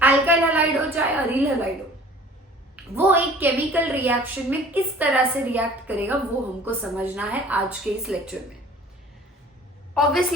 अल्काइल हैलाइड हो चाहे अरील हैलाइड हो, वो एक केमिकल रिएक्शन में किस तरह से रिएक्ट करेगा वो हमको समझना है आज के इस लेक्चर में।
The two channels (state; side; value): normal; both; correlation 0.48